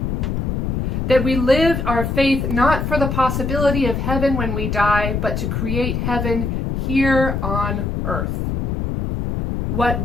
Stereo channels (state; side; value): noise; left; rumble, 1 dB below the sound